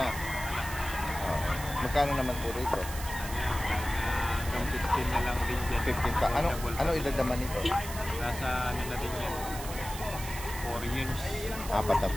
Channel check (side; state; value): right; noise; hiss, 10 dB below the sound